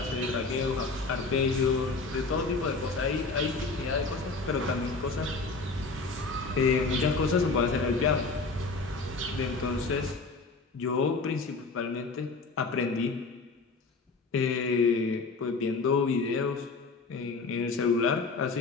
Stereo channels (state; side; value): quieter; right; 4.0 dB